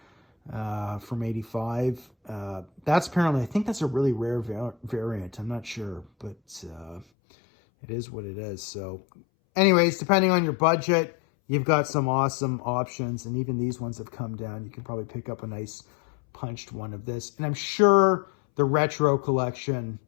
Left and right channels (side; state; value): right; drops out; at 7.1 s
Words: from 85. That's apparently, I think that's a really rare variant. I'm not sure, but it is what it is. So anyways, depending on your budget, you've got some awesome options, and even these ones have come down. You can probably pick up a nice punched one of this. And I'm sure the retro collection